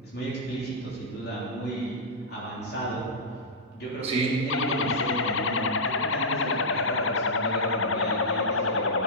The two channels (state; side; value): normal; both; correlation -0.11